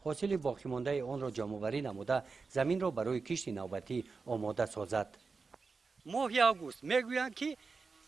حاصل باقی مانده آن را جمع‌آوری نموده زمین را برای کشت نوبتی آماده سازد. ماه آگوست میگویند که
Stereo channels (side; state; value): left; quieter; 4.6 dB